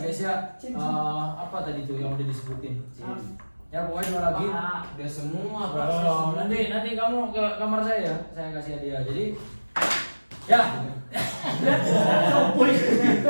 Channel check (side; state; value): both; inverted; correlation -1.00